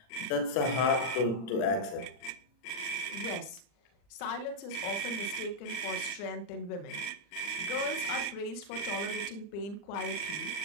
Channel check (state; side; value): late; right; 39 ms